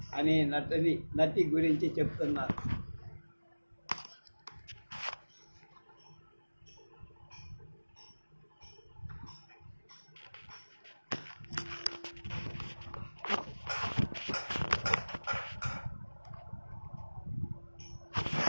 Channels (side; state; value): both; inverted; correlation -1.00